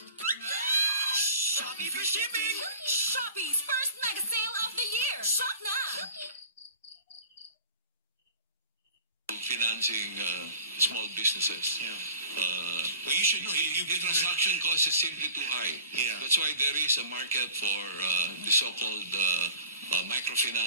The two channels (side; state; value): both; inverted; correlation -0.46